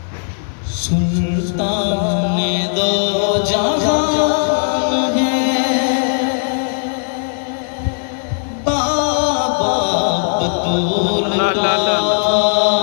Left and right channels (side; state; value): right; silent; 61 dB below the other